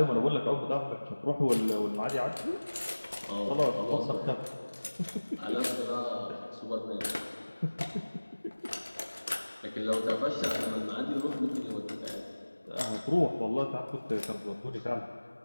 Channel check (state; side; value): inverted; both; correlation -1.00